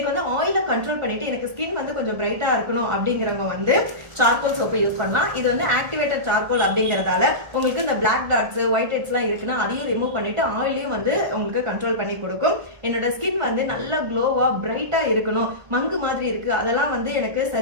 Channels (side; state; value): left; late; 1.4 ms